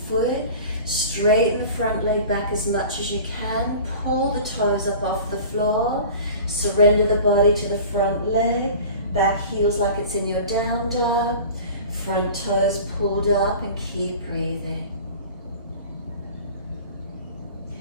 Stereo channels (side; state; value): both; inverted; correlation -0.40